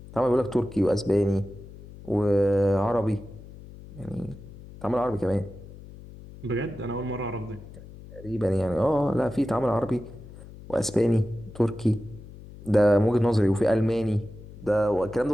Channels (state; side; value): noise; left; hum, 17 dB below the sound